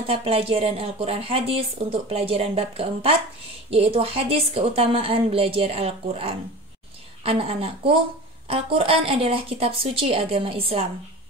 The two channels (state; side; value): normal; both; correlation 0.34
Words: pelajaran Al-Quran Hadis untuk pelajaran bab keempat, yaitu hadis keutamaan belajar Al-Quran. Anak-anakku, Al-Quran adalah kitab suci agama Islam.